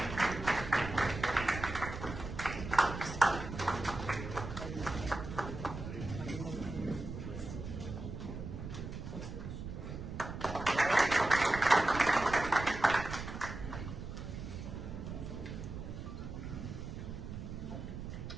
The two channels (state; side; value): noise; right; rumble, 8 dB below the sound